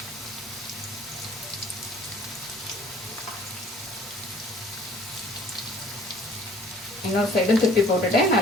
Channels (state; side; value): normal; both; correlation 0.54